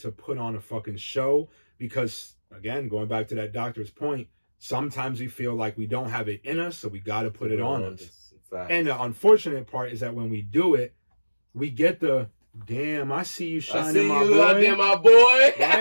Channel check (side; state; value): both; inverted; correlation -1.00